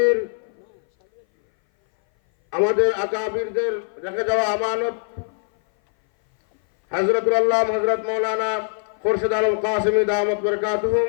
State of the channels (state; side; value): silent; right; 59 dB below the other